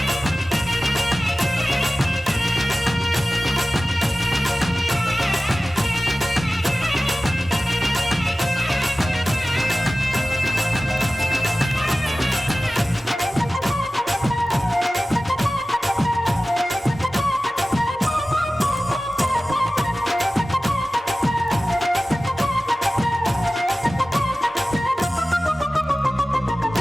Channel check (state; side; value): normal; both; correlation 0.96